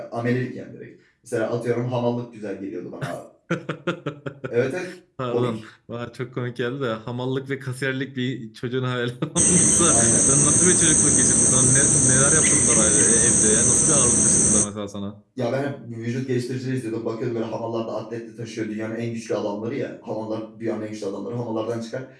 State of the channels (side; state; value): both; identical; correlation 1.00